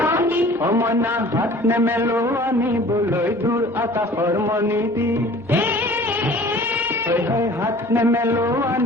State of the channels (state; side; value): normal; both; correlation 0.47